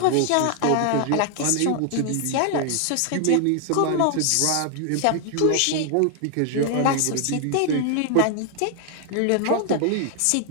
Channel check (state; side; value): different; both; correlation 0.00